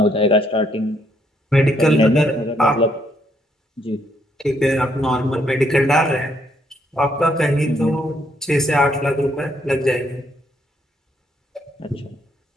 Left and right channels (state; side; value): normal; both; correlation 0.72